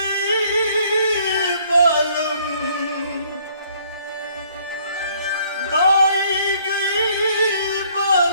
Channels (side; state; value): both; inverted; correlation -0.62